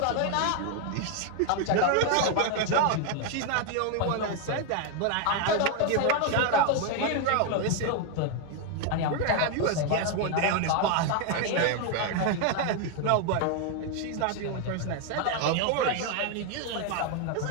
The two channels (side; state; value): both; different; correlation 0.01